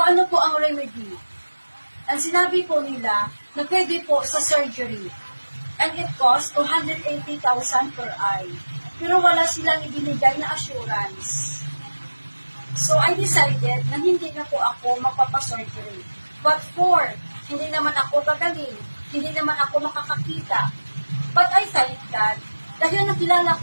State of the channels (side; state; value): both; inverted; correlation -1.00